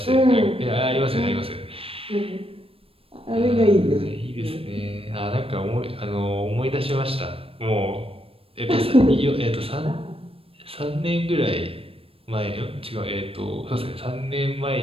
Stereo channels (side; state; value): left; late; 0.28 ms